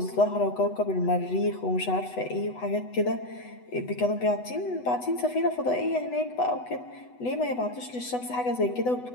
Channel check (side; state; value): right; late; 8.1 ms